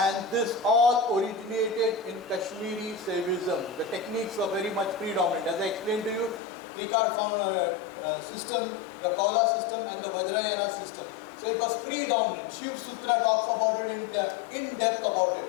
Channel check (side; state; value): right; drops out; at 6.4 s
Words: this all originated in Kashmiri Saivism. The techniques were very much predominant. As I explained to you, Trikar system, the Kaula system and the Vajrayana system. So it was predominant. Shiv Sutra talks about it in depth about it.